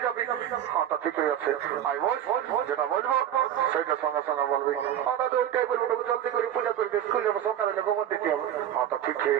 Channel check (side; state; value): left; quieter; 10.7 dB